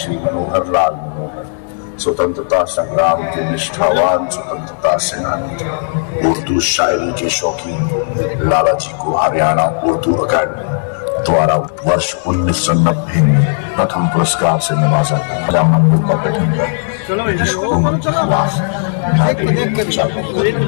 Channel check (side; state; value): right; silent; 59 dB below the other